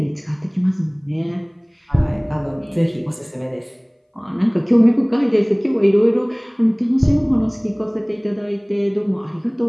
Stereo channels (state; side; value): identical; both; correlation 1.00